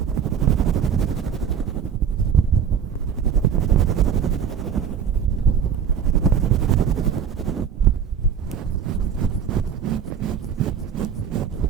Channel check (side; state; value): left; quieter; 7.6 dB